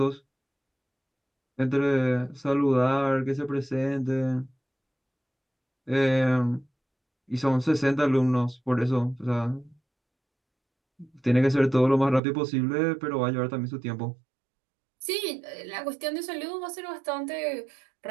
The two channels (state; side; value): drops out; left; at 12.2 s